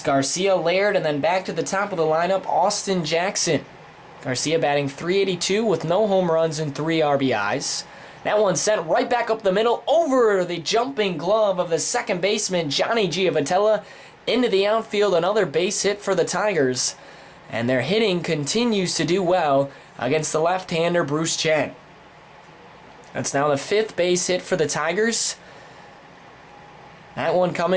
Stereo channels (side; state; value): both; identical; correlation 1.00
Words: Garcia, Laird, and then back to the top of the lineup, Austin Jackson. Garcia batting .382 with no home runs and 3 RBIs. That one sent right back up the middle over the jumping glove of the second baseman, Johnny Giavotella, into the outfield. Another base hit for the Tigers. And their hitting continues to do well against the left-hander, Bruce Chen. That's now the 5th base hit for the Tigers. That one